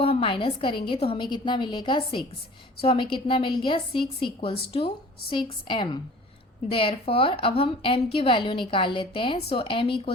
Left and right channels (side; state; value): both; normal; correlation 0.45